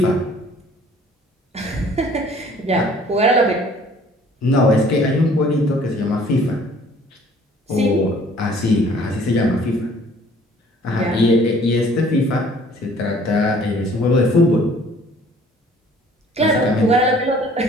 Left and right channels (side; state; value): both; normal; correlation 0.55